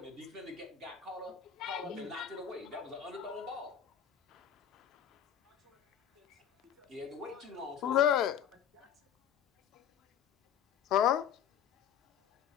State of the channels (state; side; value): quieter; right; 8.8 dB